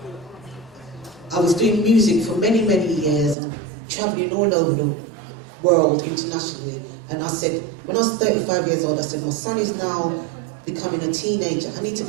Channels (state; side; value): drops out; left; at 3.4 s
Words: I was doing music for many, many years and traveling all over the world internationally. And I said, when I was 35 years old, I said, my son is now becoming a teenager. I need to